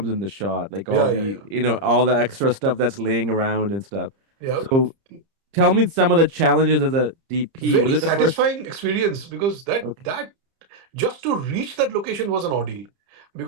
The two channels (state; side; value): late; left; 30 ms